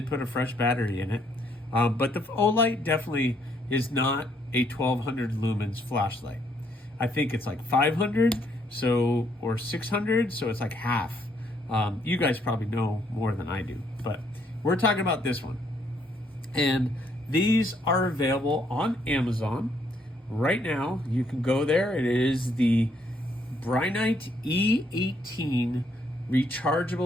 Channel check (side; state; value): both; normal; correlation 0.70